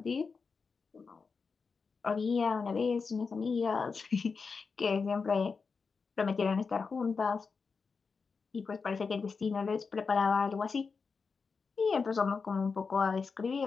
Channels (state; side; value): quieter; right; 5.0 dB